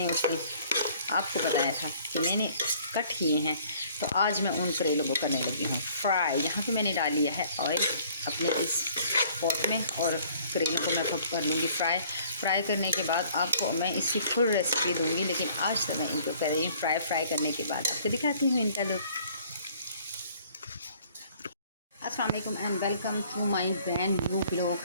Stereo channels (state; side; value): inverted; both; correlation -0.57